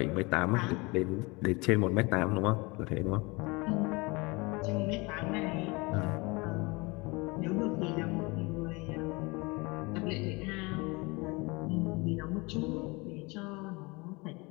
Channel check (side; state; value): right; quieter; 25.9 dB